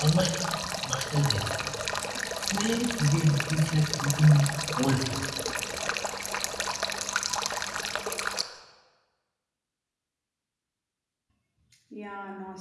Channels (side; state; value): both; identical; correlation 1.00